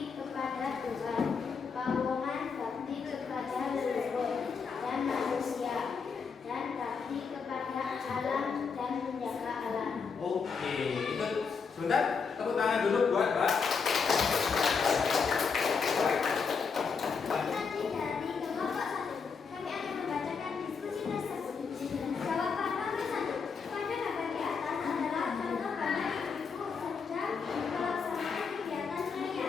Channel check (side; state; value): right; quieter; 5.6 dB